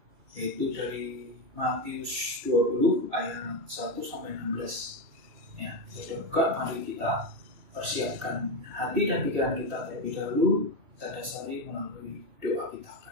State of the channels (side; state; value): left; late; 2.9 ms